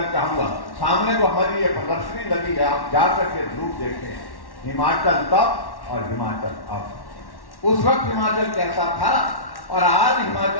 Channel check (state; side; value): late; right; 1.1 ms